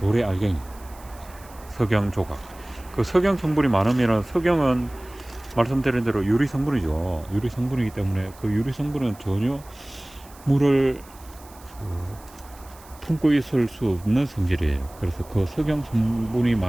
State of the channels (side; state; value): right; noise; hiss, 23 dB below the sound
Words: 알갱이, 석영 조각, 그 석영 성분이 많으면, 석영은 말씀드린 대로 유리 성분이죠. 유리 성분이기 때문에 그 유리 성분은 전혀 물을 품고 있을 수 없는 성질이에요. 그래서 그 석영 성분이